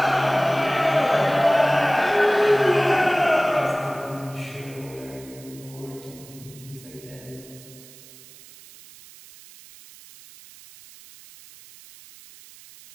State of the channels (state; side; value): noise; right; hiss, 21 dB below the sound